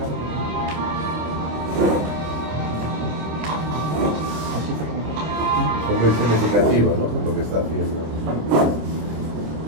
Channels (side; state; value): left; late; 26 ms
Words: Son muy significativos, ¿no? Lo que está haciendo.